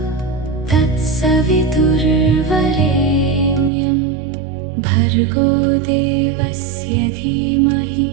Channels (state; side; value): drops out; left; at 3.7 s